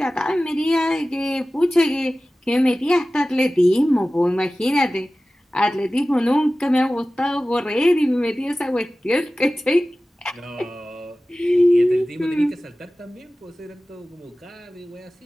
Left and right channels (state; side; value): normal; both; correlation 0.96